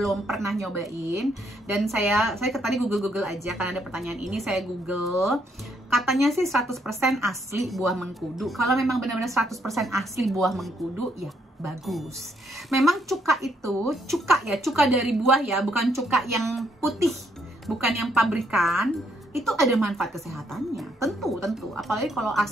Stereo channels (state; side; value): normal; both; correlation 0.72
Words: pernah nyobain, dan saya tadi Google aja karena ada pertanyaan ini, saya Google. Katanya sih 100% asli buah mengkudu. Kalau memang benar-benar 100% asli buah mengkudu, ya bagus. Memang cuka itu, cuka dari buah ya, bukan cuka yang putih, bukan yang pabrikan. Itu ada manfaat kesehatannya, tentu. Apalagi kalau